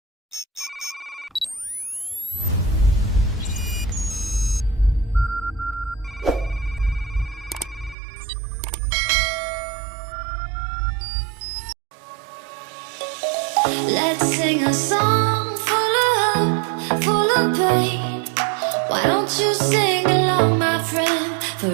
Let's sing a song full of hope, full of pain. Why don't you sing along, my friend?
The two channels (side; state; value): left; drops out; at 8.0 s